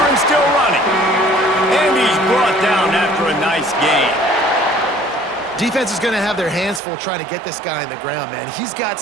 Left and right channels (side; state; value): left; drops out; at 6.8 s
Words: and still running. And he's brought down after a nice gain. Defense is going to have their hands full trying to get this guy on the ground, man. He's got